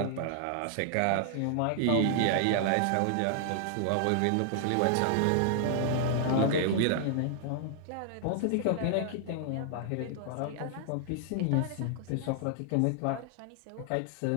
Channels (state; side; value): different; both; correlation 0.00